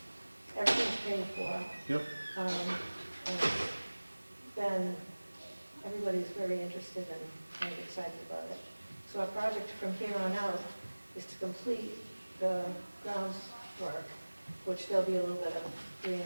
Everything's paid for. Yep. And then everybody's very interested and excited about it. So our project from here on out is to complete the grounds work, which there'll be a little bit of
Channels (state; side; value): inverted; both; correlation -1.00